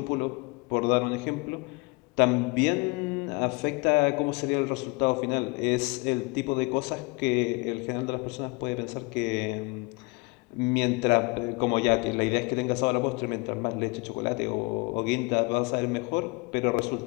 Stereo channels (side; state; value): right; quieter; 28.6 dB